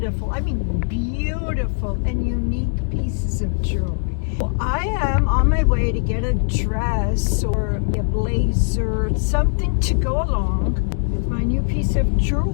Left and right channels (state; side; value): silent; right; digital silence